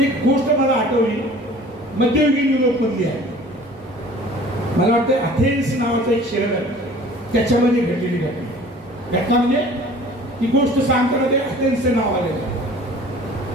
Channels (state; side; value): normal; both; correlation 0.47